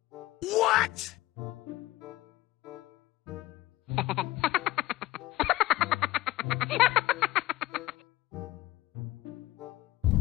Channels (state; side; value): quieter; right; 17.5 dB